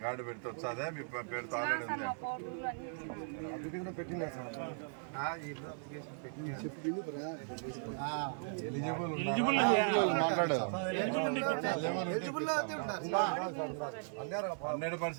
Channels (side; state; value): left; silent; digital silence